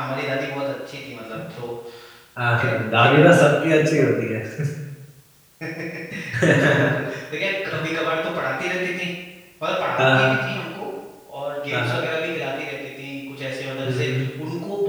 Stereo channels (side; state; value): both; identical; correlation 1.00